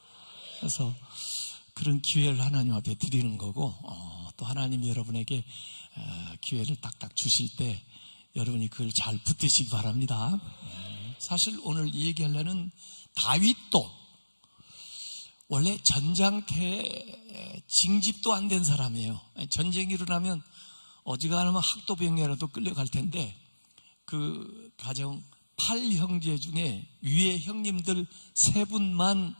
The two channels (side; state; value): both; inverted; correlation -1.00